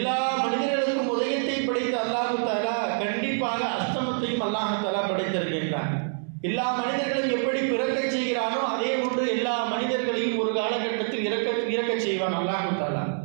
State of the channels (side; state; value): left; silent; 61 dB below the other